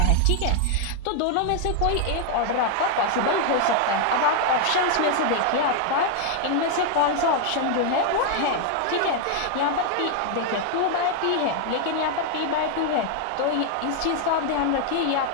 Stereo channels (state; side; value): different; both; correlation 0.00